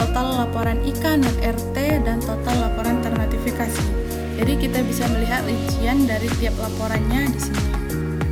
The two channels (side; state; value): both; identical; correlation 1.00